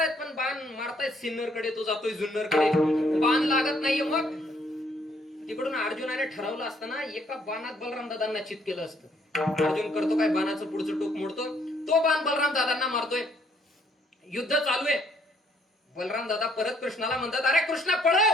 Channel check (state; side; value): normal; both; correlation 0.67